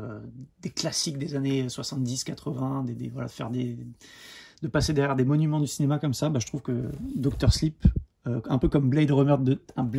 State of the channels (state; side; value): identical; both; correlation 1.00